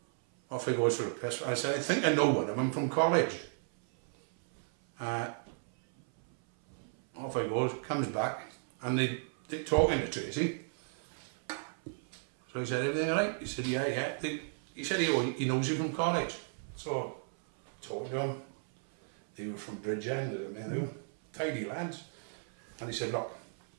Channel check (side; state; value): left; silent; 55 dB below the other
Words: Off he goes for a piss. I said, I think I know one of them from college. Off he goes, comes back, and they're talking to Tracy. So he said, everything all right? He said, yeah. He said he knows you from college. So talking to him, they were from Bridgend, they were tidy lads. And he said, look,